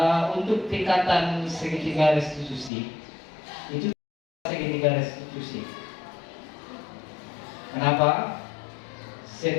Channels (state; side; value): drops out; right; at 2.7 s